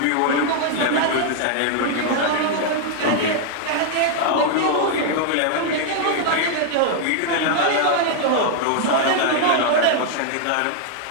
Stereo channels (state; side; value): different; both; correlation 0.00